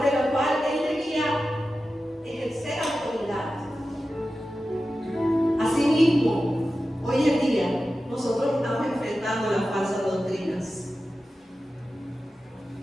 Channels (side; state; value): both; normal; correlation 0.93